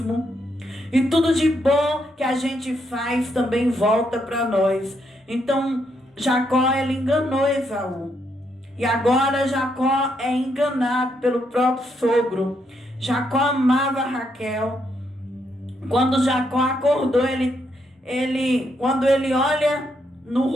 E tudo de bom que a gente faz, também volta para nós. Então, Jacó, ele enganou Esaú. E agora Jacó é enganado pelo próprio sogro. Jacó amava Raquel. Quando Jacó acordou, quando ele olha no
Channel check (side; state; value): both; normal; correlation 0.77